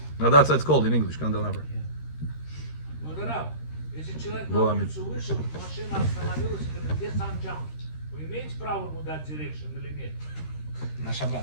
Now that's what it's called in English, candelabra. Модерав, если человек на Было улицу вышел, машина остановилась, и говорит, где санджам? Вы имеете право ему дать дирекшн или нет? На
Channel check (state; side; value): late; right; 13 ms